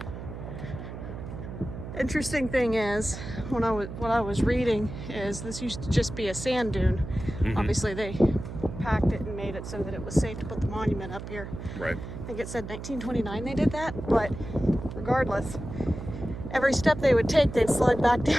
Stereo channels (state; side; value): noise; right; hum, 9 dB below the sound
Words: Interesting thing is, what I was reading is this used to just be a sand dune. Mm-hmm. Obviously, they packed it and made it so that it was safe to put the monument up here. Right. I think it said 1929 they did that, but regardless, every step they would take, they'd slide back